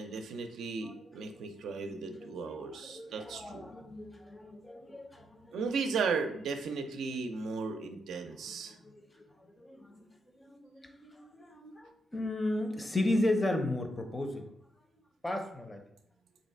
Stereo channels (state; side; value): normal; both; correlation 0.80